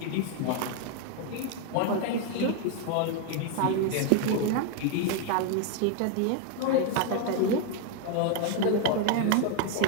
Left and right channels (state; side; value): different; both; correlation 0.01